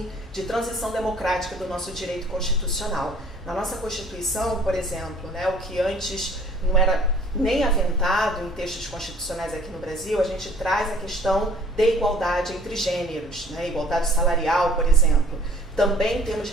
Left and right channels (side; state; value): both; normal; correlation 0.54